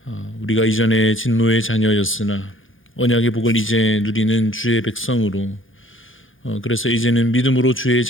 우리가 이전에 진노의 자녀였으나 언약의 복을 이제 누리는 주의 백성으로 그래서 이제는 믿음으로 주의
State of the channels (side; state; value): right; late; 0.58 ms